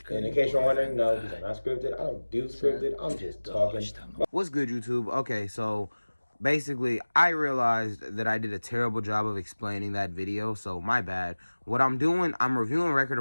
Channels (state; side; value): inverted; both; correlation -1.00